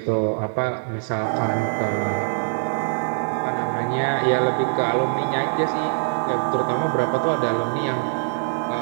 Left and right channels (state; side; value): silent; left; digital silence